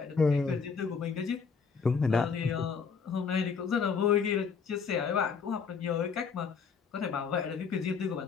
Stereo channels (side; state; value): right; quieter; 5.8 dB